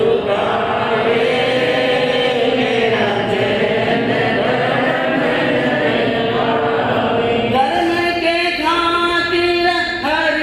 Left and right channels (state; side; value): identical; both; correlation 1.00